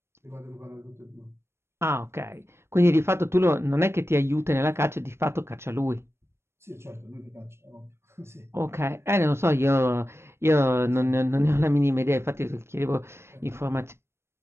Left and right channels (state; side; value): late; left; 0.12 ms